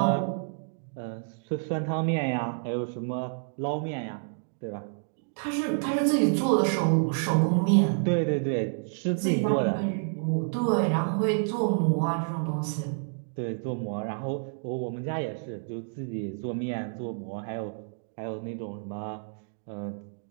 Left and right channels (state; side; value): silent; left; digital silence